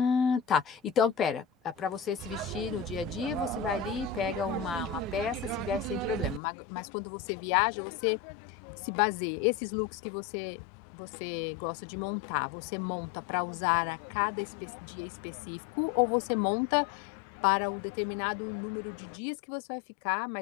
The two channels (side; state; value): right; drops out; at 6.4 s